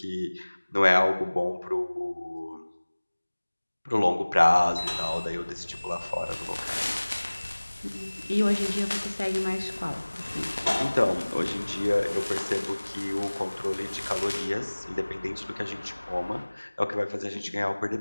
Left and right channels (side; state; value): both; inverted; correlation -1.00